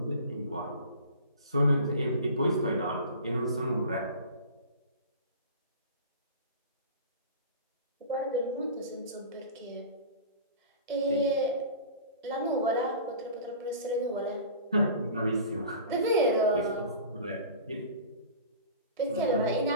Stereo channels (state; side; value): inverted; both; correlation -0.37